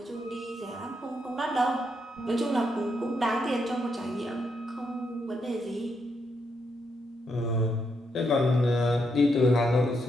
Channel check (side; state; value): both; normal; correlation 0.79